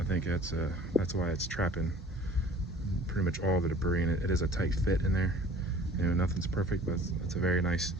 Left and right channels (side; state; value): both; normal; correlation 0.48